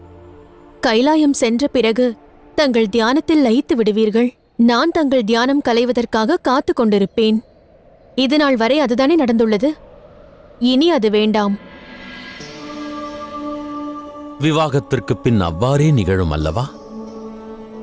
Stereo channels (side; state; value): both; identical; correlation 1.00